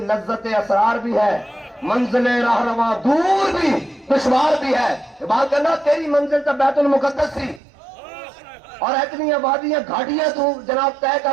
لذت اسرار بھی ہے. منزل راہنما دور بھی دشوار بھی ہے. اقبال کہنا تیری منزل تو بیت المقدس سی اور اتنی آبادیاں گھاٹیاں تو جناب طے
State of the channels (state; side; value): drops out; left; at 7.6 s